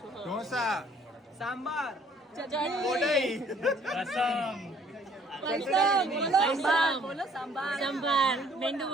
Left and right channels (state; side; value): normal; both; correlation 0.60